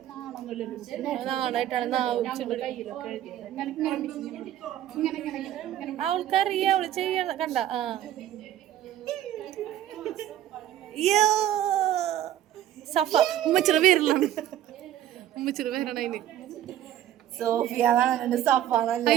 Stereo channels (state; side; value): quieter; left; 12.0 dB